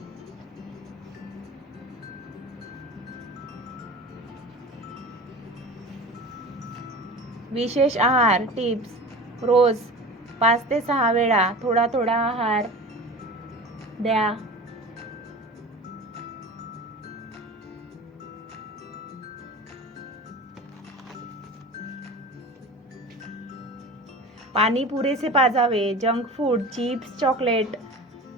विशेष आहार टिप्स. रोज 5 ते 6 वेळा थोडा थोडा आहार द्या. पाणी पुरेसे पाजावे. जंक फूड, चिप्स, चॉकलेट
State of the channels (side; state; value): both; normal; correlation 0.35